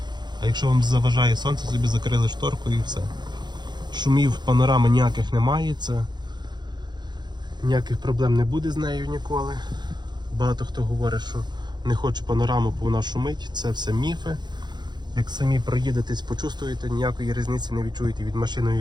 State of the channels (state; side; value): late; left; 0.21 ms